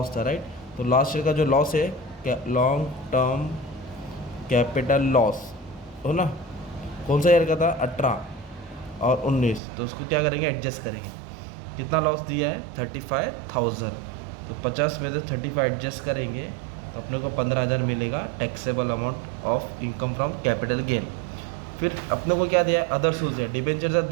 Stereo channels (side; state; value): left; drops out; at 9.6 s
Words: था, राइट। तो लास्ट ईयर का जो लॉस है, क्या, लॉन्ग टर्म कैपिटल लॉस हो ना, कौन सा ईयर का था, 18 और 19। तो उसको क्या करेंगे, एडजस्ट करेंगे। कितना लॉस दिया है, 35,000। तो 50 में से 35 एडजस्ट करेंगे, तो अपने को 15,000 मिलेगा taxable amount of income from capital gain. फिर अपने को क्या दिया है, अदर सोर्स है, डिबेंचर से